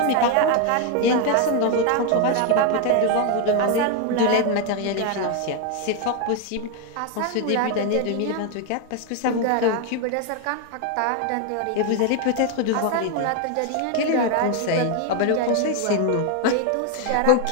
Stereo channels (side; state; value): both; different; correlation 0.01